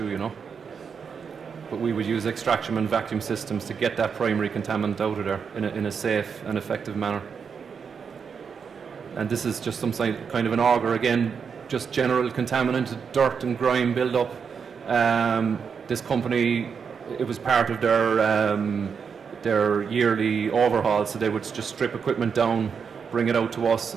But we would use extraction and vacuum systems to get that primary contaminant out of there in a safe and effective manner. And this is just some kind of an auger, again, just general contaminant, dirt and grime build-up. This company, it was part of their yearly overhaul, so they would just strip equipment down, bring it out to us,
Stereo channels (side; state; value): left; quieter; 6.3 dB